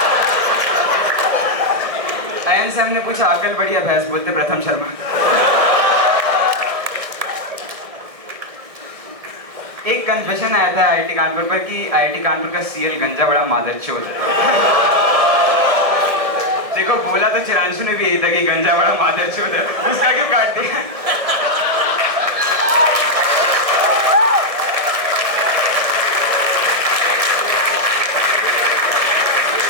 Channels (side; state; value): left; late; 1.6 ms